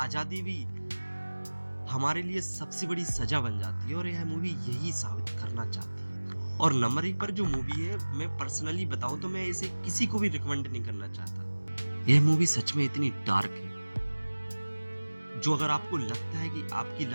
भी हमारे लिए सबसे बड़ी सजा बन जाती है, और यह मूवी यही साबित करना चाहती है। और नंबर 1 पर जो मूवी है, मैं पर्सनली बताऊं तो मैं इसे किसी को भी रिकमेंड नहीं करना चाहता। यह मूवी सच में इतनी डार्क है, जो अगर आपको लगता है कि आपकी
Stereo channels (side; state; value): both; inverted; correlation -1.00